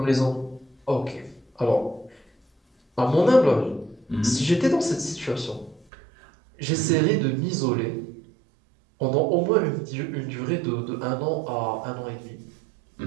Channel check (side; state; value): left; drops out; at 5.9 s